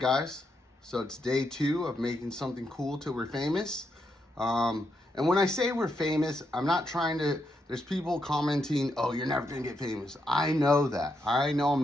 So it's day 2 of making something cool till we're famous. And when I say we're famous, I'm not trying to, there's people commenting, oh, you're never gonna get famous. I know that. I know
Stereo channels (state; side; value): normal; both; correlation 0.81